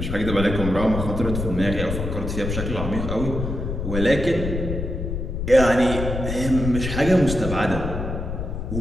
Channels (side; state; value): left; noise; rumble, 4 dB below the sound